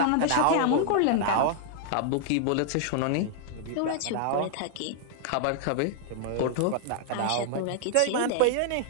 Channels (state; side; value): different; both; correlation -0.01